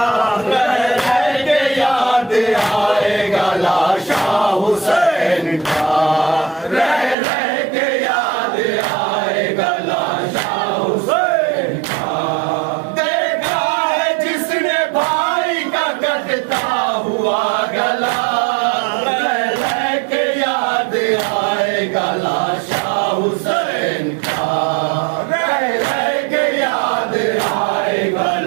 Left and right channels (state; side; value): drops out; left; at 7.2 s